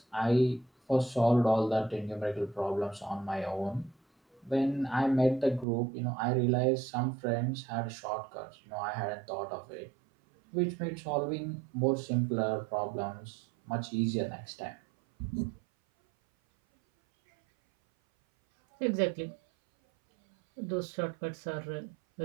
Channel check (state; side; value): drops out; left; at 5.7 s